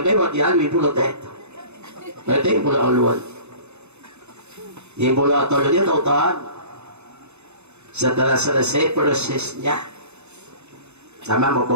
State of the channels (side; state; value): left; late; 0.81 ms